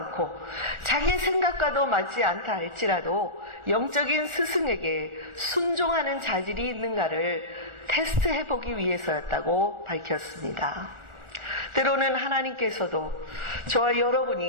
자기의 생각과도 맞지 않다 할지라도 영적인 스승에게 순종하는 자질이 있는가를 테스트해보기 위해서였다고 밝혔습니다. 때로는 하나님께서도 저와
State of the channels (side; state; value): left; late; 1.4 ms